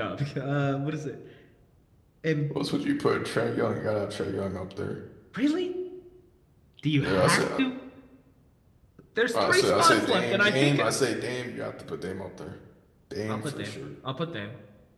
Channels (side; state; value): both; identical; correlation 1.00